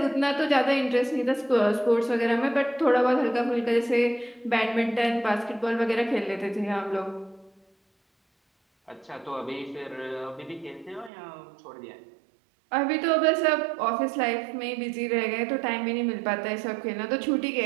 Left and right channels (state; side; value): drops out; left; at 11.1 s